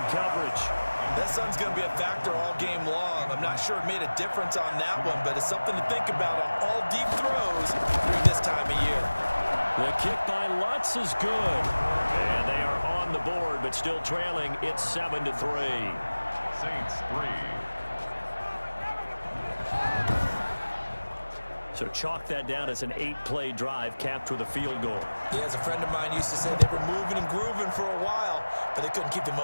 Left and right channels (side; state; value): both; inverted; correlation -1.00